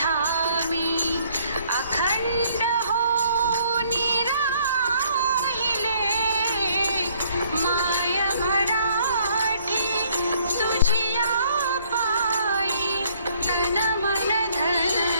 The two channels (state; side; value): inverted; both; correlation -0.63